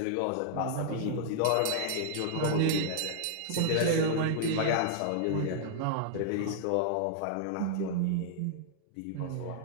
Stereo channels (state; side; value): different; both; correlation -0.01